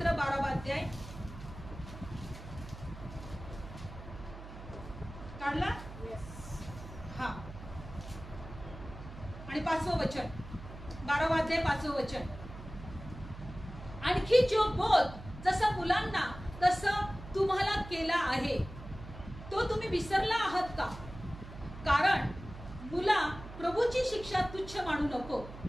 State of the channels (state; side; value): noise; right; hum, 13 dB below the sound